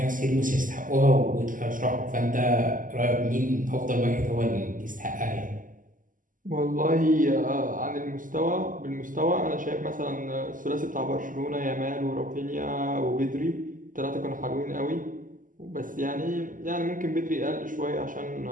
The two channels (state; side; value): late; left; 0.38 ms